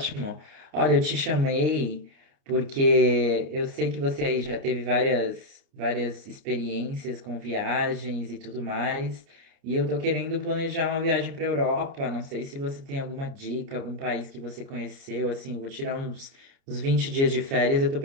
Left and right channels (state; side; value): late; left; 29 ms